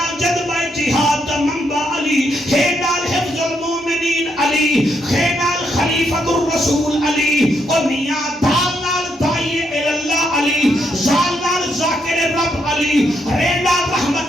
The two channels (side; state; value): both; normal; correlation 0.77